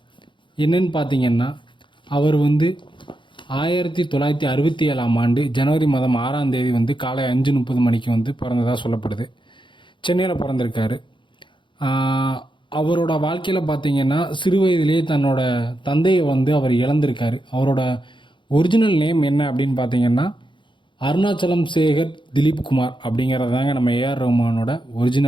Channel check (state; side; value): late; right; 0.23 ms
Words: என்னன்னு பார்த்தீங்கன்னா, அவர் 1967ஆம் ஆண்டு ஜனவரி மாதம் 6ஆம் தேதி காலை 5:30 மணிக்கு பிறந்ததாக சொல்லப்படுது. சென்னையில் பிறந்திருக்காரு. அவரோட வாழ்க்கையில் பார்த்தீங்கன்னா, சிறு வயதிலேயே தன்னோட தந்தையை அவர் இழந்திருக்காரு. அவரோட ஒரிஜினல் நேம் என்ன அப்படின்னு பார்த்தீங்கன்னா, அருணாச்சலம் சேகர் திலீப் குமார் அப்படிங்கிறது தாங்க நம்ம ஏஆர் ரஹ்மானோட